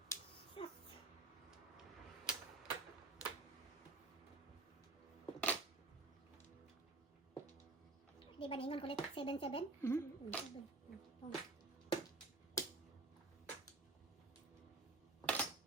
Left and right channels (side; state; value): left; quieter; 3.2 dB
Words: Di ba ningon kulit 7?